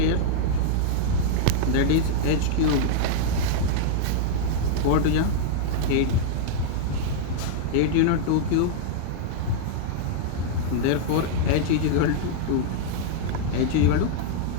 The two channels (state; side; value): different; both; correlation -0.01